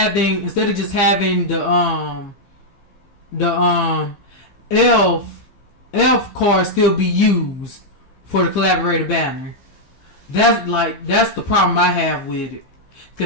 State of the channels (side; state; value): right; late; 15 ms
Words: the elf cars still be used for the collaborator banner. That's the problem I have with it.